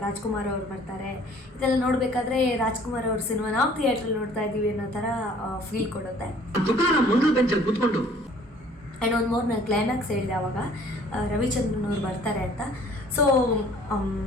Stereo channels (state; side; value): normal; both; correlation 0.54